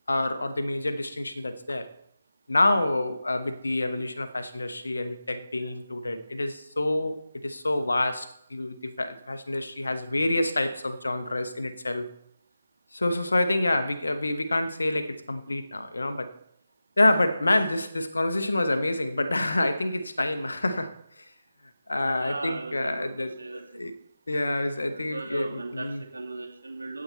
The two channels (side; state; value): both; inverted; correlation -0.94